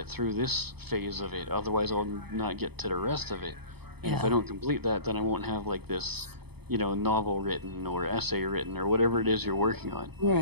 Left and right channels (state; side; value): late; left; 0.97 ms